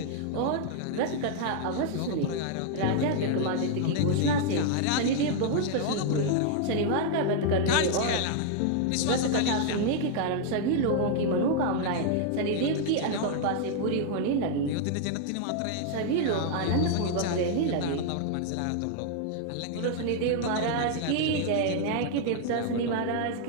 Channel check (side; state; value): both; different; correlation 0.00